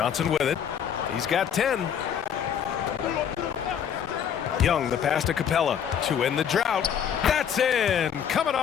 with it. He's got 10. Young, the pass to Capella to end the drought. That's in. Coming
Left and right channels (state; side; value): quieter; right; 8.4 dB